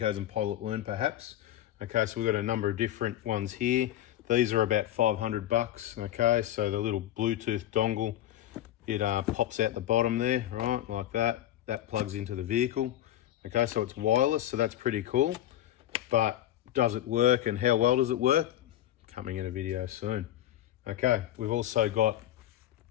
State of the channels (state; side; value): quieter; right; 12.8 dB